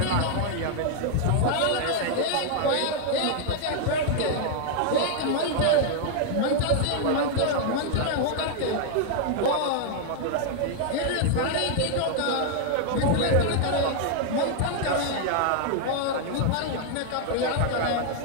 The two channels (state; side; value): different; both; correlation 0.00